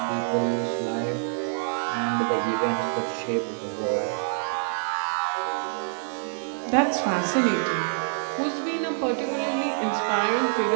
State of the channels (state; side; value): silent; left; digital silence